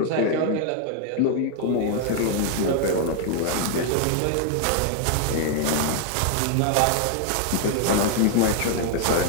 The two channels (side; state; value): both; different; correlation 0.00